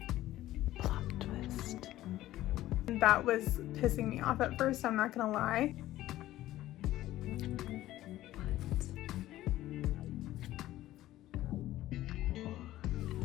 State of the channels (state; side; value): quieter; right; 14.9 dB